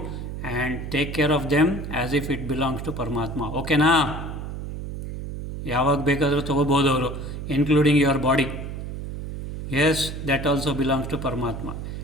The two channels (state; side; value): noise; right; hum, 7 dB below the sound